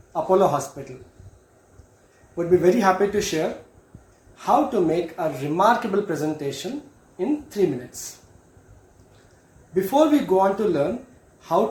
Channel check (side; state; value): both; identical; correlation 1.00